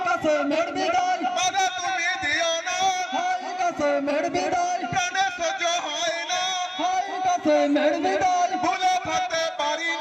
কাসেমের বিদায়, বাধা তুমি দিও না, হাই কাসেমের বিদায়, প্রাণে সহ্য হয় না, হাই কাসেমের বিদায়, ভুলে থাকতে পারি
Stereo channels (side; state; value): both; identical; correlation 1.00